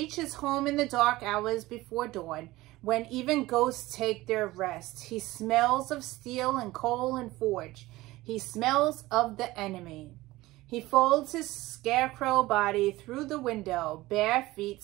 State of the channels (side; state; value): left; quieter; 18.6 dB